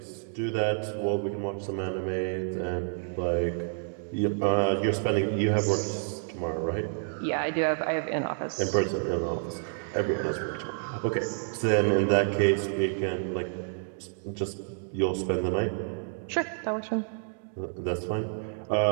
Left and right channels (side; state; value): left; silent; digital silence